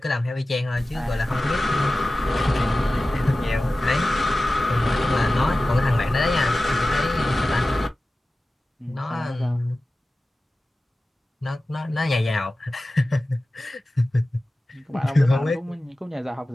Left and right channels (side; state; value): both; normal; correlation 0.96